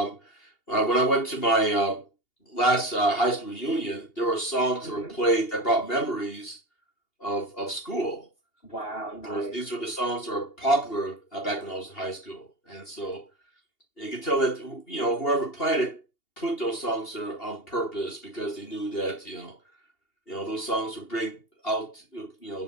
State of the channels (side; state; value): right; late; 2.8 ms